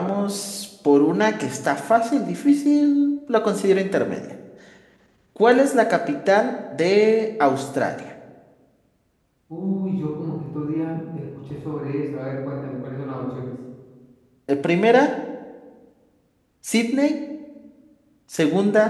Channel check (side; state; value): both; identical; correlation 1.00